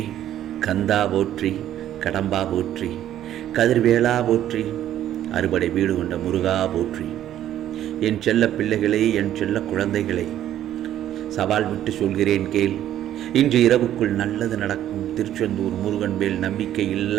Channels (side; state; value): left; quieter; 11.7 dB